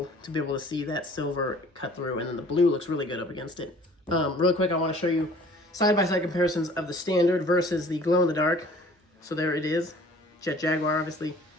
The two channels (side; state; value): both; normal; correlation 0.51